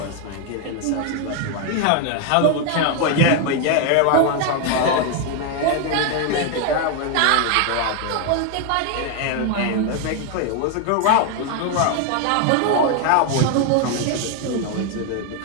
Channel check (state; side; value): different; both; correlation 0.01